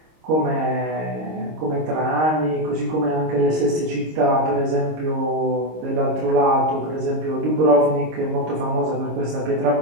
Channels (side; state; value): left; late; 26 ms